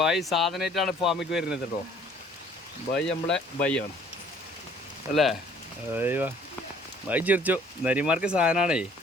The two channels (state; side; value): normal; both; correlation 0.56